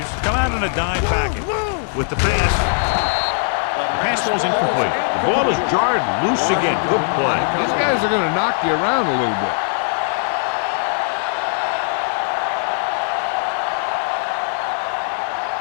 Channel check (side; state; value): right; silent; digital silence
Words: come out in a dime package. With the pass, the pass ball's incomplete. The ball is jarred loose again. Good play. These guys are going to knock you around a little bit.